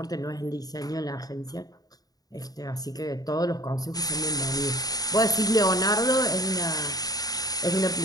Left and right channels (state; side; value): late; right; 0.18 ms